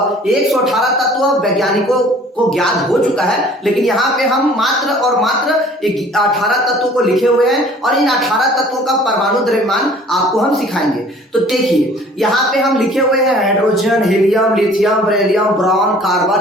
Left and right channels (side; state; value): both; normal; correlation 0.51